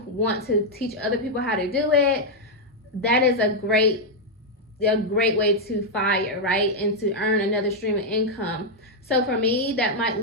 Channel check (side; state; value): both; normal; correlation -0.01